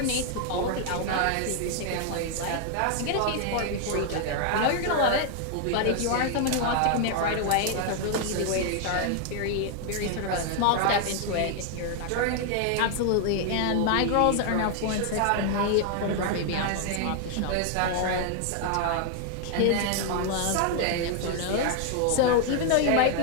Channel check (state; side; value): different; both; correlation 0.00